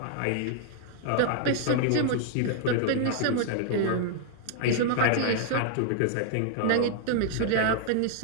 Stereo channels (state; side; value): different; both; correlation -0.01